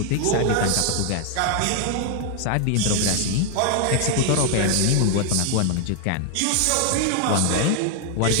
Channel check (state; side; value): different; both; correlation 0.00